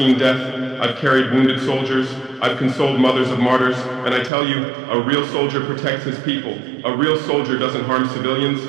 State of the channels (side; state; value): left; drops out; at 4.3 s